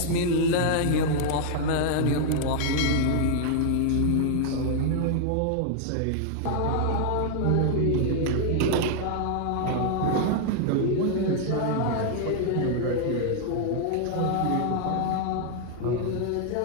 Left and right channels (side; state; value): both; different; correlation 0.00